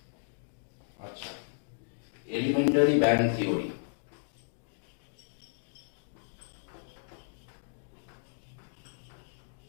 আচ্ছা, এলিমেন্টারি ব্যান্ড থিওরি।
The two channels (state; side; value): silent; right; digital silence